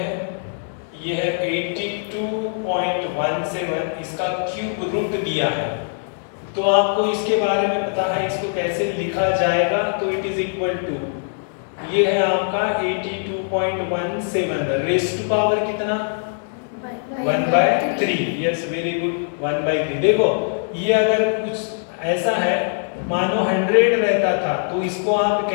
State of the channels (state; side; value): silent; right; digital silence